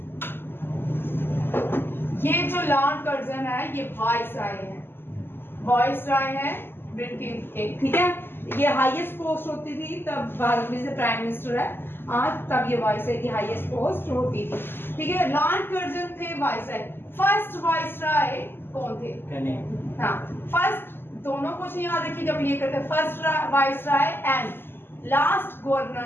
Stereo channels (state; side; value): late; right; 0.10 ms